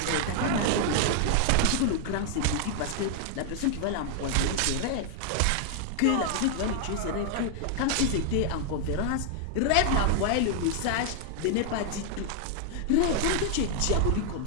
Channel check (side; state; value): both; different; correlation 0.00